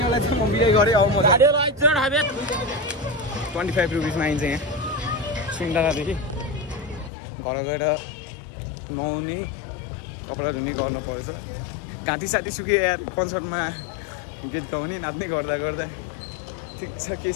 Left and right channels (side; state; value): right; drops out; at 7.1 s